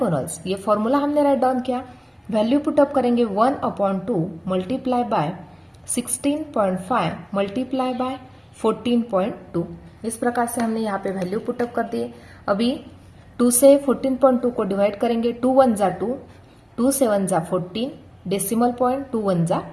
ये फॉर्मूला हमने राइट डाउन किया. वैल्यू पुटअप करेंगे 1/2 मल्टीप्लाई बाय 16.5 मल्टीप्लाई बाय 14.2. इस प्रकार से हमने यहाँ पे वैल्यू पुटअप कर दिए. अभी 2 से 14.2 को डिवाइड करेंगे. 2 1 जा 2, 2 7 जा 14, डेसिमल पॉइंट 2 1 जा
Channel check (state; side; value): identical; both; correlation 1.00